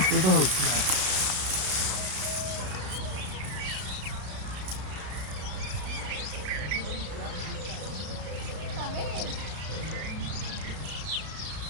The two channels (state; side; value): late; left; 33 ms